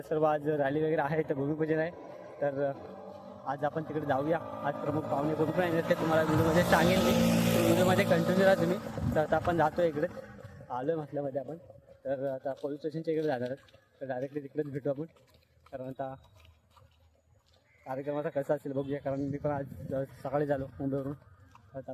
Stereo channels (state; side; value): identical; both; correlation 1.00